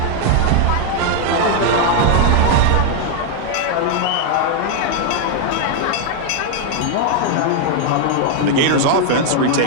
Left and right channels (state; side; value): different; both; correlation 0.00